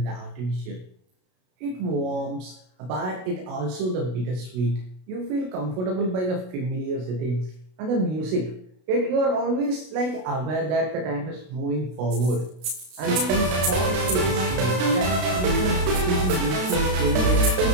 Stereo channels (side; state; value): left; late; 32 ms